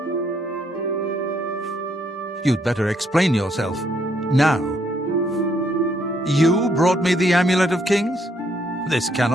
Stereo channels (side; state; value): both; normal; correlation 0.71